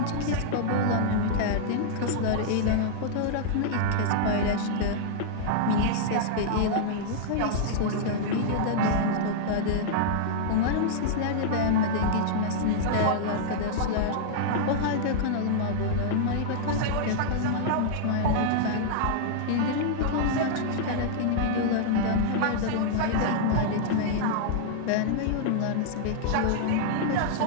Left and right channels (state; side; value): different; both; correlation -0.01